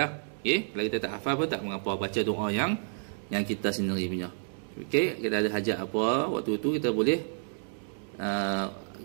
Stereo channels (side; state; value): left; silent; digital silence